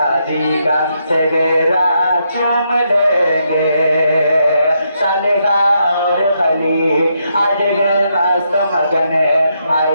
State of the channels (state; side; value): inverted; both; correlation -0.79